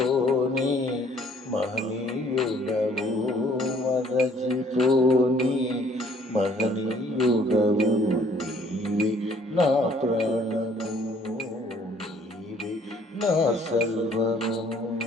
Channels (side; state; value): both; normal; correlation 0.60